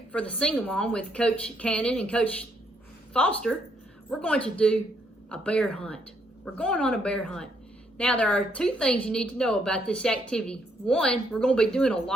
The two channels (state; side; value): normal; both; correlation 0.72